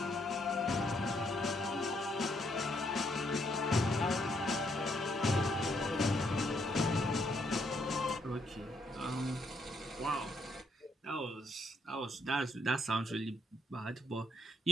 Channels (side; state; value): both; normal; correlation 0.73